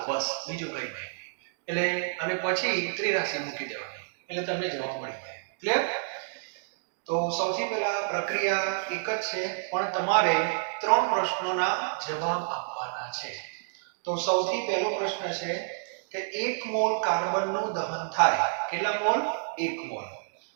બસ, બીજું કંઈ નહીં. એટલે અને પછી ત્રિરાશી મૂકી દેવાની એટલે તમને જવાબ મળી જાય. ક્લિયર? તો સૌથી પહેલા પ્રક્રિયા એક જ છે, પણ તમારે 3 પ્રશ્નોના જવાબ આપવાના છે. તો સૌથી પહેલો પ્રશ્ન છે કે 1 મોલ કાર્બનનું દહન થાય. કેટલા મોલ? 1 મોલ.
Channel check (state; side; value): silent; left; digital silence